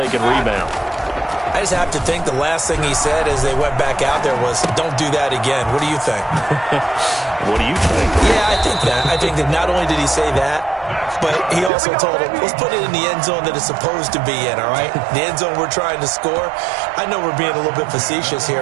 can rebound. I just have to think the last thing he said as they went back out there was, don't do that again. What do you think? What do you think? Yeah, I think that. I think that not only did he say that, but he also told him, let's put it in the end zone that it's supposed to be in, all right? The end zone we're trying to score. I know we're being a little bit facetious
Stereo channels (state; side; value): drops out; left; at 11.7 s